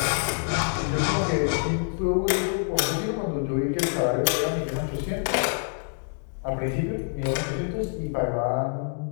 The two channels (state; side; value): silent; right; 59 dB below the other